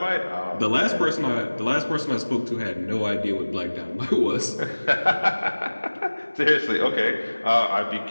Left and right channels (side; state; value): both; inverted; correlation -1.00